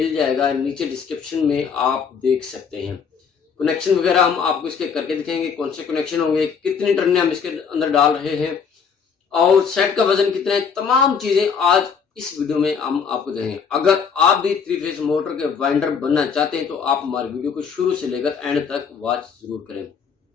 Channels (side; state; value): right; quieter; 6.3 dB